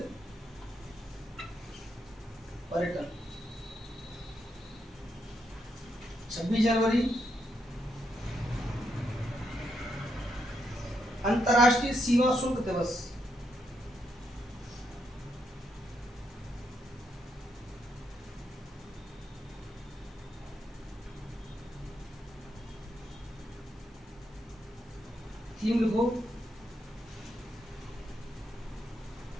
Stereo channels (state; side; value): normal; both; correlation 0.80